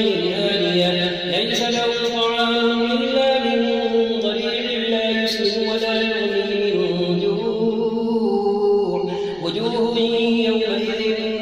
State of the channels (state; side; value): noise; right; rumble, 25 dB below the sound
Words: آنية ليس لهم طعام إلا من ضريع لا يسمن ولا يغني من جوع وجوه يومئذ